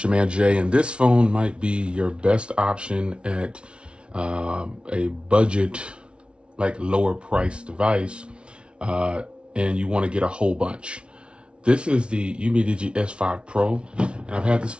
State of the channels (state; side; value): late; left; 0.058 ms